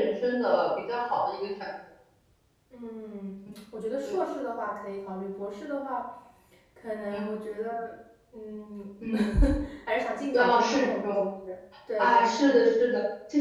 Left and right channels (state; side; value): identical; both; correlation 1.00